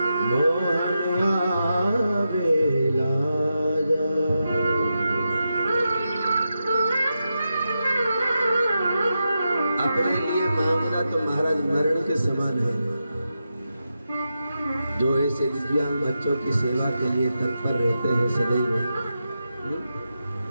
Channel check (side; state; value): both; inverted; correlation -0.88